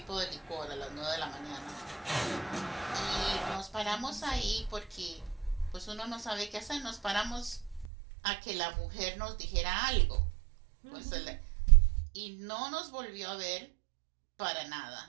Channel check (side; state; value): left; drops out; at 7.9 s